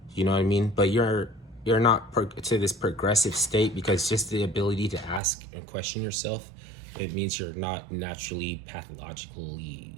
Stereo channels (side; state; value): left; drops out; at 5.2 s